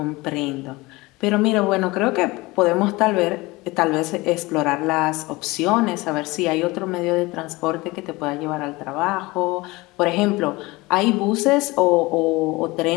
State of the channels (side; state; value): right; quieter; 22.0 dB